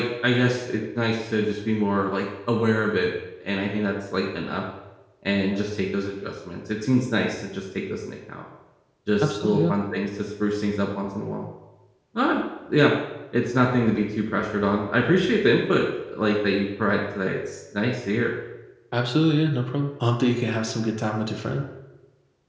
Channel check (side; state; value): both; identical; correlation 1.00